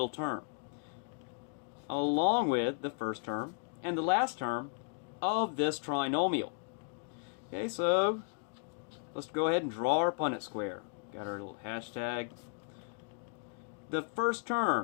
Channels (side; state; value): right; quieter; 39.2 dB